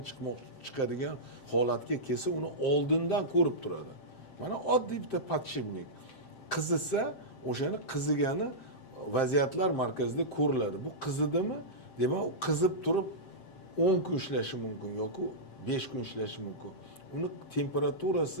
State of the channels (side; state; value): right; late; 7.6 ms